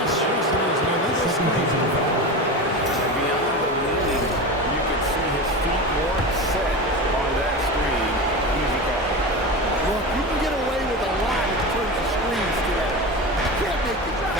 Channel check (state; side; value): normal; both; correlation 0.25